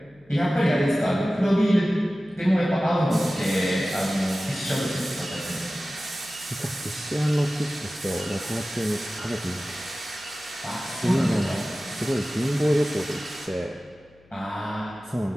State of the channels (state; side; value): noise; left; hum, 30 dB below the sound